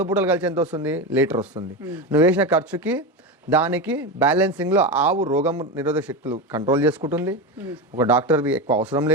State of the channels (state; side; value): normal; both; correlation 0.18